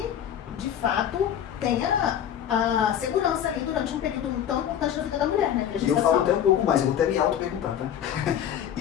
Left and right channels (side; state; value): right; quieter; 9.7 dB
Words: de fato, tenha a segurança ali durante um período tão importante da vida da mulher, né? E eu falo até um pouco mais, eu vou até me auto-perguntar, tá?